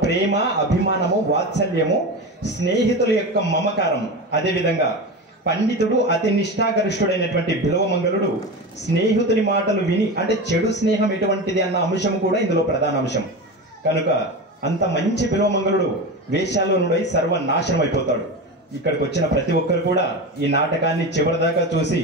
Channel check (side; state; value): both; normal; correlation 0.24